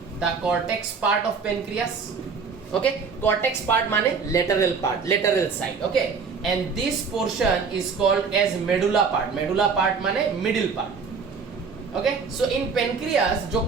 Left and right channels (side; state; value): left; quieter; 5.3 dB